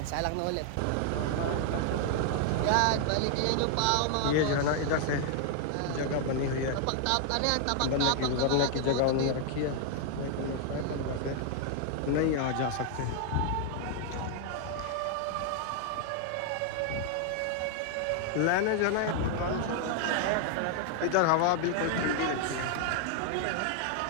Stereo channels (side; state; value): both; different; correlation 0.00